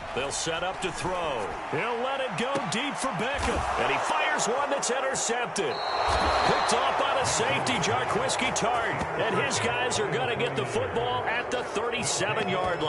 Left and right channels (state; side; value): identical; both; correlation 1.00